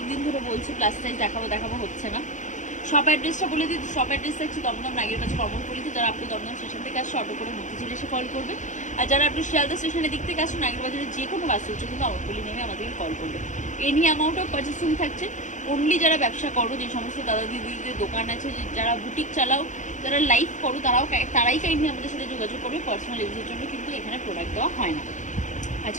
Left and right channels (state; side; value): late; right; 0.36 ms